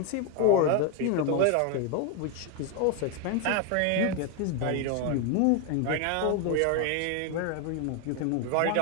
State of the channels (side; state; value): both; different; correlation 0.01